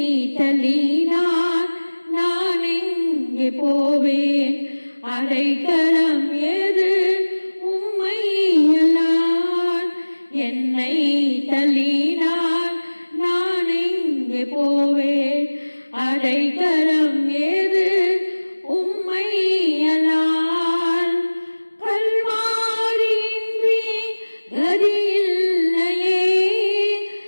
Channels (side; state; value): both; inverted; correlation -1.00